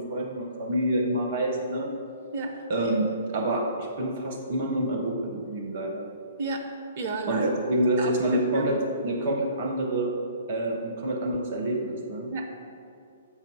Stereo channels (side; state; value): both; inverted; correlation -0.54